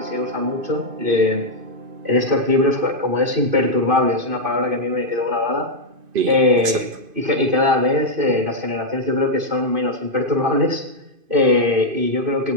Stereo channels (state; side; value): late; left; 2.5 ms